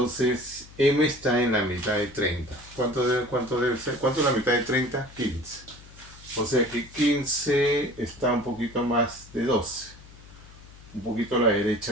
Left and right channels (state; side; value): noise; left; hum, 20 dB below the sound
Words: M está en la mitad de 30. ¿Cuánto debe ser? ¿Cuánto es la mitad de 30? 15. O sea que 15 está un poquito más de 12. Un poquito a la